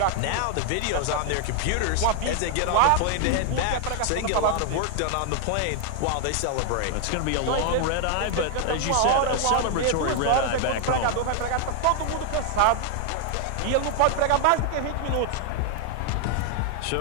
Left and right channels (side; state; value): both; different; correlation 0.00